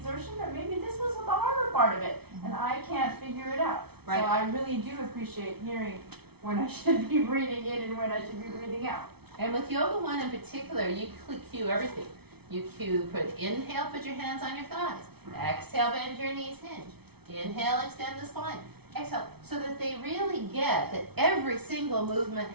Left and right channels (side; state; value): left; late; 0.97 ms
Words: or maybe this was the harder part of it, and I can't figure it out. Right. So I really do appreciate hearing when I should be breathing in and when I should be breathing out. And with Yoga 1 in particular, you cue everything. You inhale, put your hands on your thighs. Exhale, bend your knees, hinge. Inhale, extend the spine. Exhale, so that they really get that every single movement